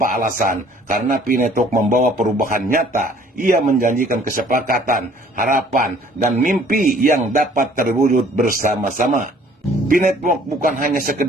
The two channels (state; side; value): normal; both; correlation 0.56